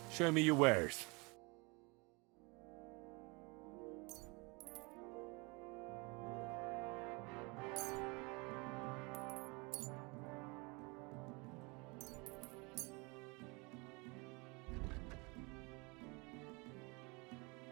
Show me your wares.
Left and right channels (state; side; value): quieter; left; 28.3 dB